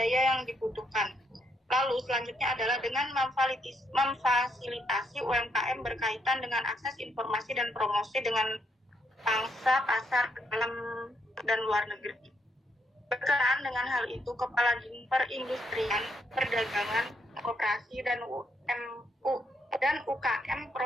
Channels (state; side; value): normal; both; correlation 0.76